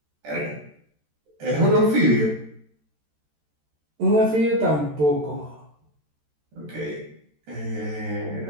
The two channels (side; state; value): left; late; 13 ms